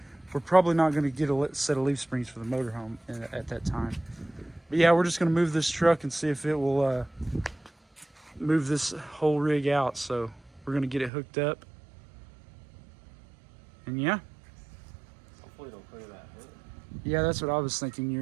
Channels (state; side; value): drops out; left; at 11.1 s